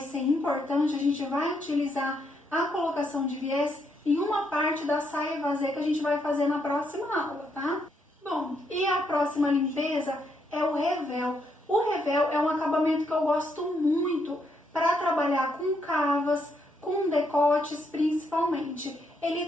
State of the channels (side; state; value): both; normal; correlation 0.76